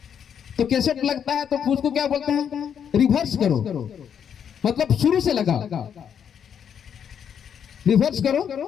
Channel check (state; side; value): quieter; right; 8.1 dB